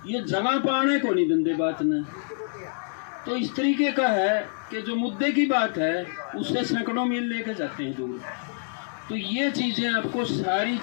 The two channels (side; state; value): right; silent; digital silence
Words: ये जगह पाने को नहीं दंदे बात ने। तो इस तरीके का है कि जो मुद्दे की बात है उससे सैकड़ों मील लेके जाते हैं दूर। तो ये चीज़ें आपको सारी